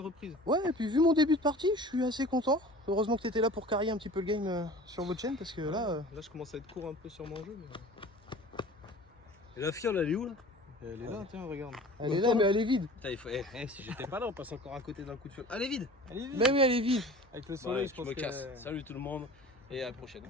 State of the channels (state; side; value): normal; both; correlation 0.42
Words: Ouais, et puis vu mon début de partie, je suis assez content. Heureusement que tu étais là pour carrer un petit peu le game sur votre chaîne parce que là. Là, je commence à être court un peu sur mon jeu. Mais... Et la fiole, elle est où là? Elle est là, tiens, regarde. Elle est là, mais elle est vide. Putain, il faut... si j'étais pas là, on passe encore à côté d'un coup de fiole. Allez, vide. Mais oui, elle est vide. Avec le Ouais, soleil, je je pense me que... casse. Salut tout le monde et à la prochaine.